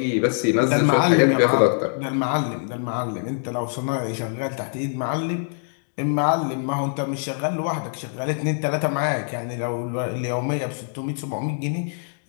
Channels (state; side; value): silent; right; 63 dB below the other